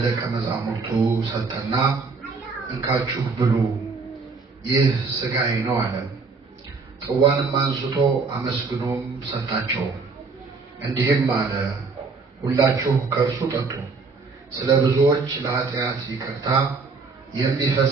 መዛሙርቱ ሰጠና እንካችሁ ብሉ፣ ይህ ሥጋዬ ነው አለ። ጽዋንም አንስቶ አመስግኖም ሰጣቸው፣ እንዲህም አለ፣ ሁላችሁ ከእርሱ ጠጡ፣ ስለ ብዙዎች ለኃጢአት ይቅርታ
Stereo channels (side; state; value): left; quieter; 4.4 dB